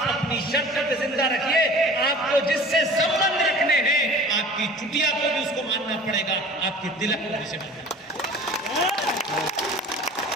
अपनी शर्त पे जिंदा रखिए। आपको जिससे संबंध रखने हैं, आपकी चुटिया को भी उसको मानना पड़ेगा, आपके तिलक को भी उसे मानना पड़ेगा।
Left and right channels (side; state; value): both; normal; correlation 0.43